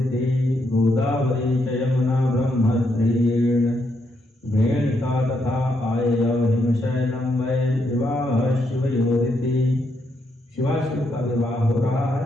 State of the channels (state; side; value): normal; both; correlation 0.78